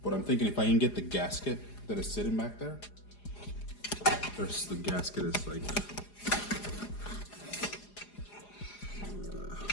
But I'm thinking if I can get the gasket that is sitting back there. There's the gasket is like,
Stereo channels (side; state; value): right; late; 4.9 ms